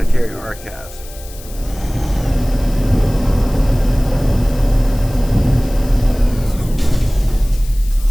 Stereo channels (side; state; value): left; noise; hiss, 19 dB below the sound